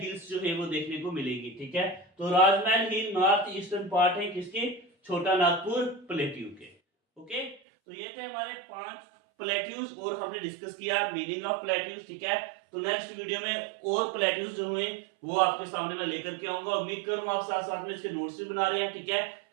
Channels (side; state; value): left; drops out; at 7.6 s